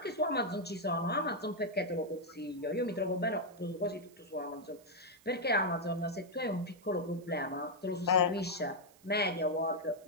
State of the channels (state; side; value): noise; right; hiss, 27 dB below the sound